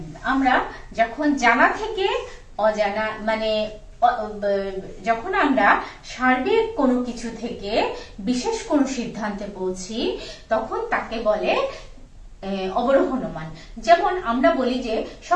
আমরা যখন জানা থেকে অজানা, মানে যখন আমরা সার্বিক কোনো কিছু থেকে বিশেষ কোনো সিদ্ধান্তে পৌঁছি তখন তাকে বলে অবরোহ অনুমান। যেমন আমরা বলি যে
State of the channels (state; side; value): identical; both; correlation 1.00